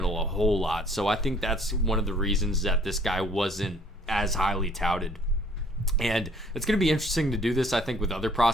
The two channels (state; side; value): normal; both; correlation 0.58